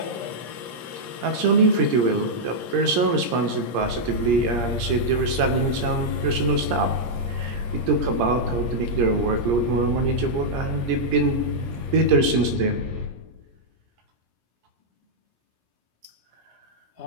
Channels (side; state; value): left; late; 17 ms